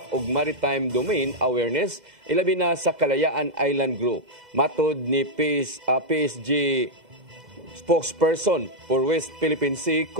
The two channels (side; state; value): left; late; 2.0 ms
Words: ug maritime domain awareness ilabi na sa Kalayaan Island Group. Matod ni PSG spokesperson for West Philippine Sea,